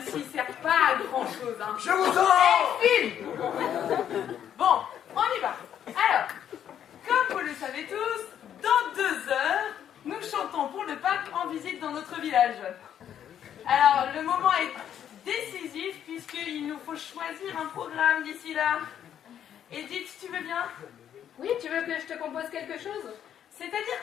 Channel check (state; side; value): quieter; right; 9.7 dB